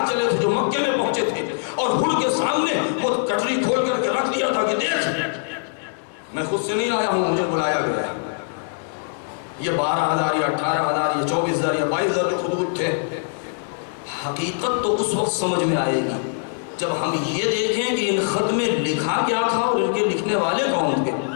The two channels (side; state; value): right; silent; digital silence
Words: چلے تھے جو مکے میں پہنچے تھے، اور ہر کے سامنے وہ کٹری کھول کر کے رکھ دیا تھا کہ دیکھ، میں خود سے نہیں آیا ہوں، مجھے بلایا گیا ہے۔ یہ 12,000 یا 18,000 یا 24,000 یا 22,000 جو خطوط تھے، حقیقت تو اس وقت سمجھ میں آئے گی جب ہم یہ دیکھیں کہ ان خط میں لکھا کیا تھا اور ان کے لکھنے والے کون تھے۔